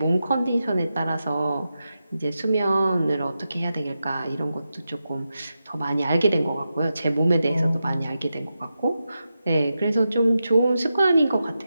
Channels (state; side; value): inverted; both; correlation -0.89